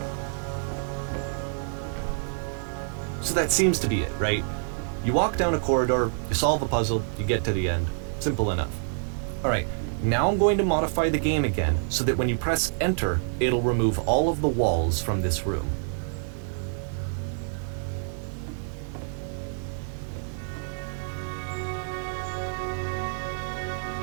So that seems to be it, right? You walk down a corridor, you solve a puzzle, you get to the end. Simple enough. Alright, now I'm going to modify the game again so that when you press enter, it'll remove all of the walls from this room.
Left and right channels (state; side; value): silent; left; digital silence